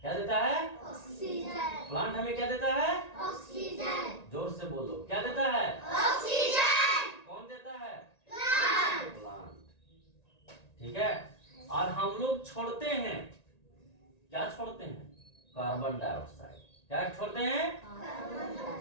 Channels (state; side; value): late; right; 1.9 ms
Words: क्या देता है? ऑक्सीजन। प्लांट हमें क्या देता है? ऑक्सीजन। जोर से बोलो, क्या देता है? ऑक्सीजन। कौन देता है? प्लांट। ठीक है, और हम लोग छोड़ते हैं, क्या छोड़ते हैं? Carbon dioxide. क्या छोड़ते हैं?